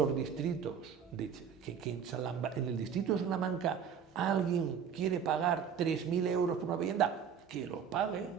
distritos, en el distrito de Salamanca, alguien quiere pagar 3.000 euros por una vivienda, que lo pague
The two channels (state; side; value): quieter; left; 7.4 dB